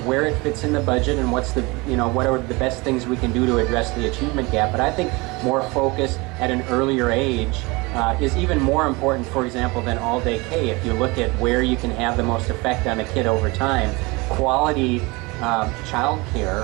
where it fits in the budget and what are the best things we can do to address the achievement gap. But I think more focus at an earlier age is even more important, for example, than all-day K. If you look at where you can have the most effect on a kid over time, quality child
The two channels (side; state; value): left; quieter; 25.0 dB